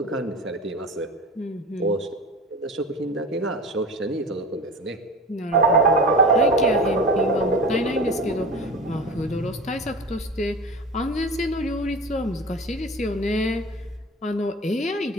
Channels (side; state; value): both; normal; correlation 0.32